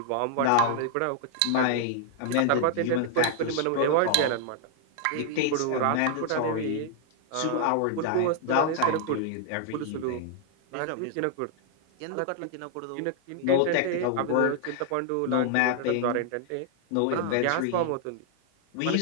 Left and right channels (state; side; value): different; both; correlation 0.00